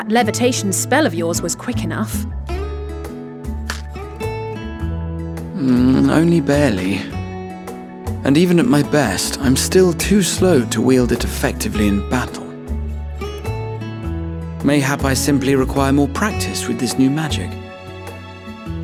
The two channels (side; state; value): both; identical; correlation 1.00